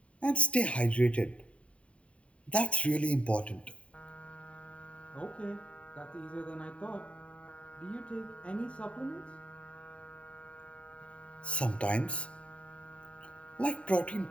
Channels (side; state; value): right; late; 0.063 ms